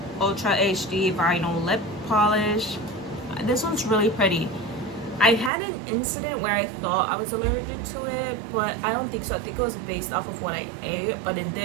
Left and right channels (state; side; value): drops out; left; at 5.5 s